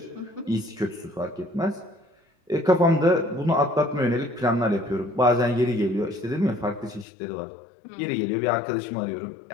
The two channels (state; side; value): drops out; right; at 7.1 s